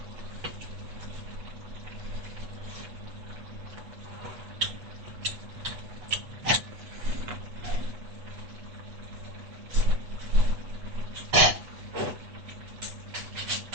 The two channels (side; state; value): left; late; 8.1 ms